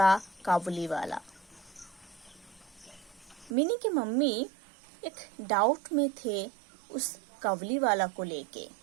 Kawliwala. Mini की mummy एक doubt में थे उस कवलीवाला को लेके.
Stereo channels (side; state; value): left; drops out; at 3.5 s